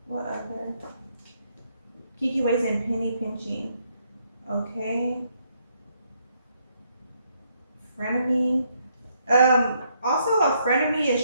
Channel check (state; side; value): inverted; both; correlation -0.74